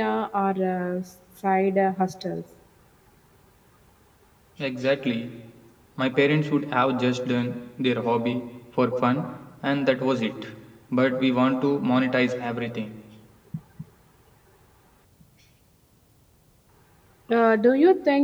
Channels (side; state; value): both; identical; correlation 1.00